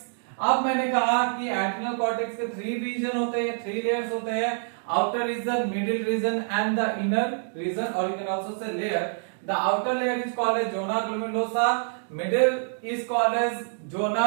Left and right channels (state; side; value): silent; left; digital silence